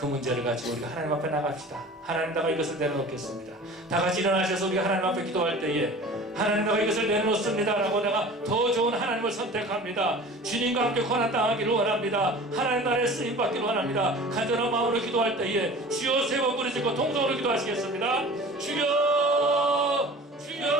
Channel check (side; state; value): both; normal; correlation 0.41